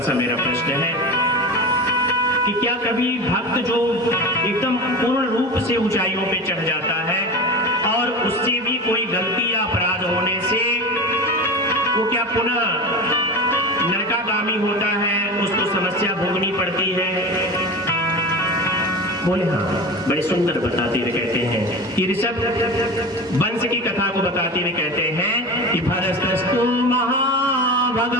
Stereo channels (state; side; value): normal; both; correlation 0.29